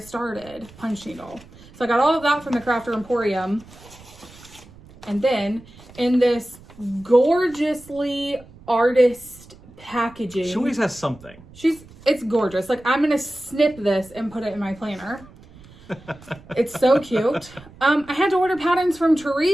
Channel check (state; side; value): noise; right; rumble, 22 dB below the sound